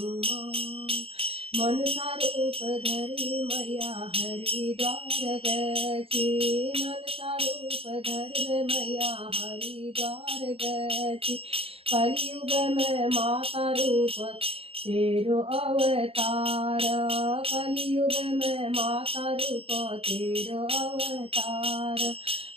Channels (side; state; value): left; late; 0.28 ms